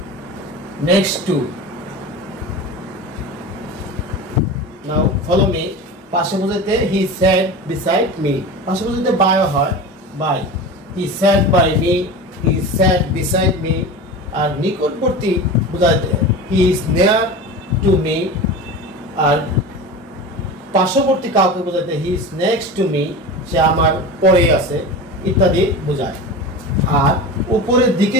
Now follow me. পাশে বোঝাতে he sat beside me. পাশে বোঝাতে by হয়, by. He sat by me, he sat beside me. আর নিকটবর্তী বোঝাতে he is near to me. আর পার্শ্ববর্তী কাউকে বোঝাতে he is next to me, সে আমার পরে আছে ইত্যাদি বোঝায়। আর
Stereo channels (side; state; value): both; normal; correlation 0.30